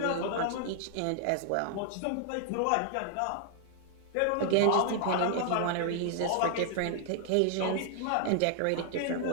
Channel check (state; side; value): different; both; correlation 0.00